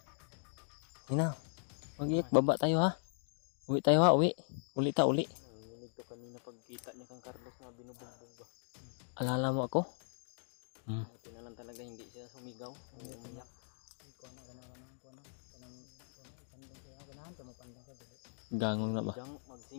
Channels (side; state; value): right; silent; digital silence